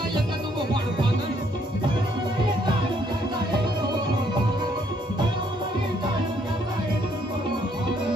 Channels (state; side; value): normal; both; correlation 0.68